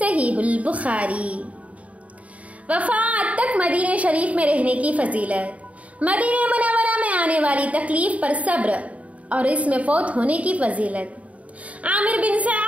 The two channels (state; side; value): late; left; 0.067 ms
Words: البخاری۔ وفات تک مدینہ شریف میں رہنے کی فضیلت۔ مدینہ منورہ میں آنے والی تکلیف پر صبر اور اس میں فوت ہونے کی فضیلت۔ عامر بن